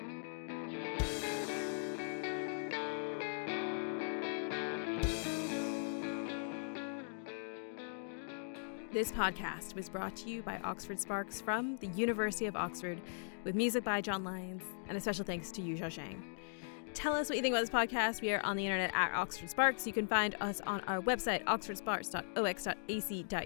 This podcast was brought to you by Oxford Sparks from the University of Oxford, with music by John Lyons, and a special thanks to Yujia Zhang. Tell us what you think about this podcast. We are on the internet at Oxford Sparks. You can find us on our website,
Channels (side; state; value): right; silent; digital silence